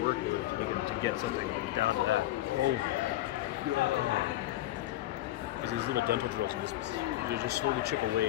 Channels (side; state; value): right; quieter; 15.2 dB